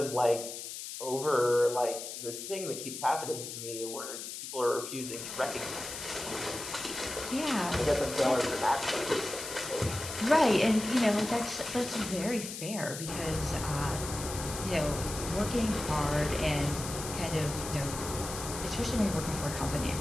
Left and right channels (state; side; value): noise; left; hiss, 8 dB below the sound